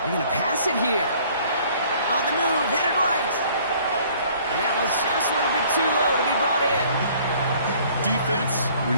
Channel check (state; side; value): inverted; both; correlation -0.56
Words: to pass it here. On the move, headed right. And that was just a little bit too low to be brought in. Defense